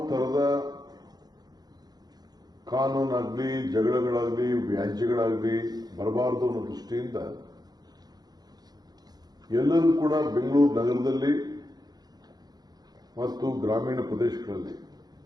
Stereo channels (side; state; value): left; late; 0.19 ms